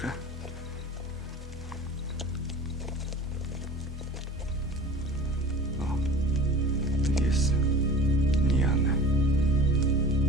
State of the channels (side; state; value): both; normal; correlation 0.39